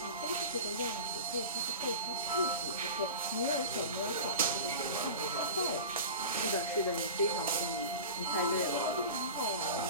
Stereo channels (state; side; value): inverted; both; correlation -0.32